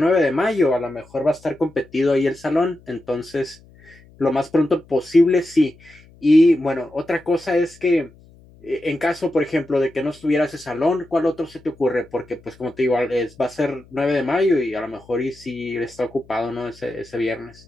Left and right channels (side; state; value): left; noise; hum, 26 dB below the sound